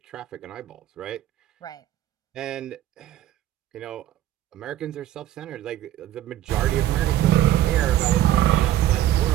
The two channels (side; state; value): left; quieter; 12.9 dB